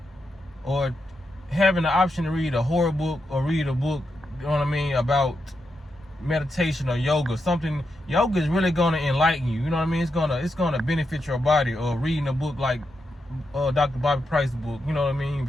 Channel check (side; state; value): both; normal; correlation 0.85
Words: or having the option to read a horror book or read a book, you know what I mean, about meditation or yoga. Something yoga is really gonna enlighten you. You know what I mean? It's gonna benefit your body. Or reading a book like Dr. Bobby Price's book. You know what I mean?